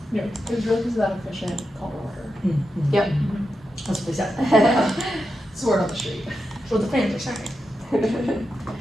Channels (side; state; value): both; normal; correlation 0.88